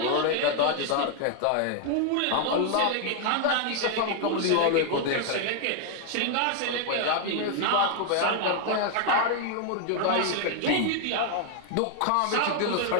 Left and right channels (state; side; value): different; both; correlation 0.00